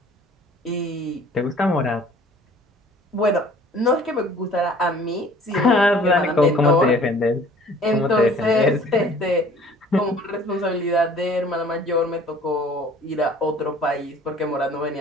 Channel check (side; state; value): both; normal; correlation 0.51